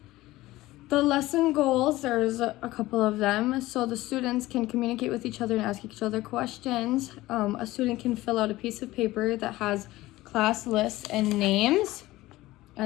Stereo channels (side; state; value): right; quieter; 17.7 dB